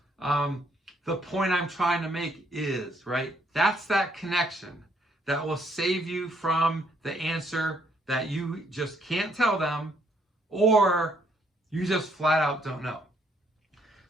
the point I'm trying to make is, right? That's that connection that will save you from the answer that you just can't tell them, or you just flat out don't know.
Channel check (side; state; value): both; normal; correlation 0.69